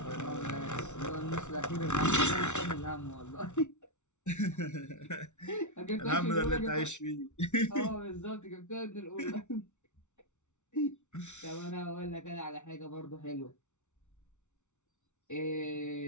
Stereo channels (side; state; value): right; late; 0.83 ms